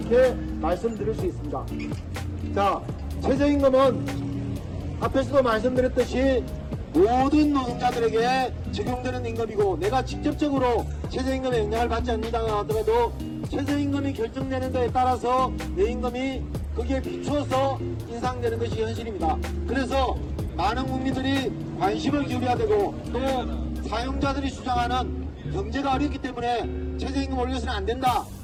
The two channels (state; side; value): identical; both; correlation 1.00